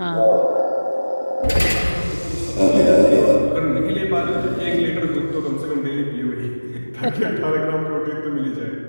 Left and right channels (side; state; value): both; inverted; correlation -1.00